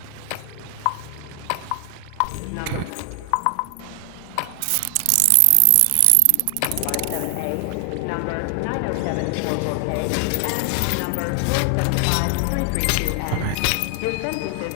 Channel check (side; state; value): both; different; correlation 0.00